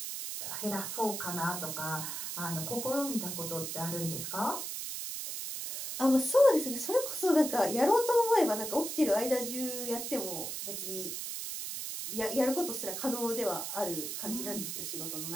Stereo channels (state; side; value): noise; right; hiss, 5 dB below the sound